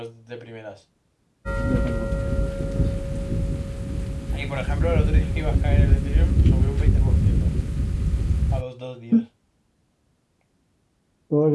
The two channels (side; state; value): both; identical; correlation 1.00